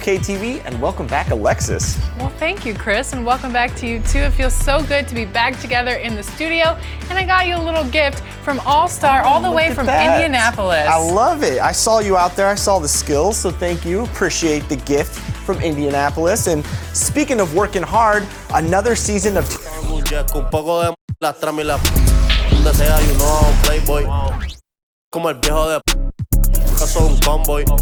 TV, and welcome back, Alexis. Well, thank you, Chris, and welcome back to you, too. It feels so good to be back together in the studio, and I got you a little gift from All-Star all the way from Indianapolis. I love it. I saw you out there. I saw the skills, so thank you. Appreciate the gift from Indianapolis. And speaking of working hard, another season of... Soy un convoy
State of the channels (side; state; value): both; identical; correlation 1.00